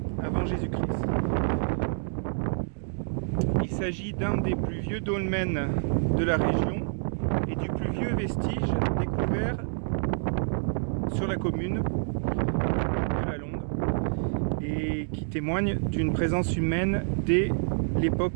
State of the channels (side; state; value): left; silent; digital silence